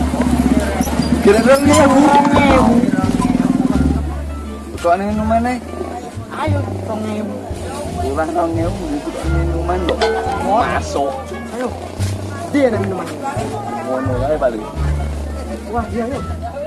Kira-kira ngewu. Kok ning rumane? Ayo, 2000. Kurang tau ngewu itu minuman kok. Masuk. Ayo. Dia ada minuman. Ngono kae paling. Wah, iya yuk.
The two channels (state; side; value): identical; both; correlation 1.00